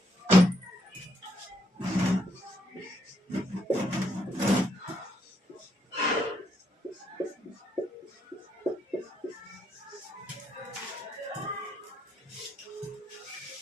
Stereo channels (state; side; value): normal; both; correlation 0.75